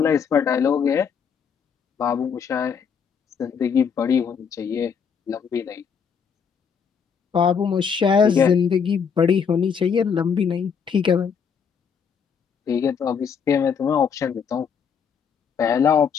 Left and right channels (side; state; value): right; quieter; 6.7 dB